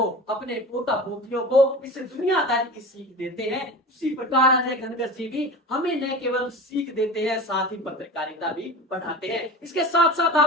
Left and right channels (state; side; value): normal; both; correlation 0.33